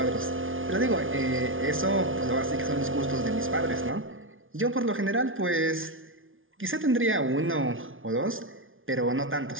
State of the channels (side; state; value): left; late; 0.58 ms